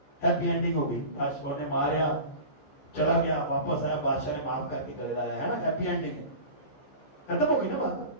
ہیپی اینڈنگ ہو گئی. بادشاہ نے ماریا, چلا گیا, واپس آیا, بادشاہ نے معاف کر کے گلے لایا, ہے نا, ہیپی اینڈنگ ہے. ختم ہو گئی نا بات,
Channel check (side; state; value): right; late; 15 ms